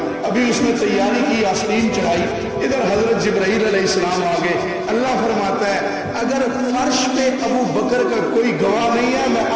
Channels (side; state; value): both; identical; correlation 1.00